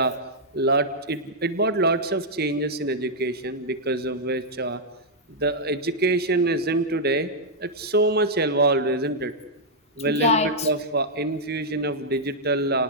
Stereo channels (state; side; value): normal; both; correlation -0.05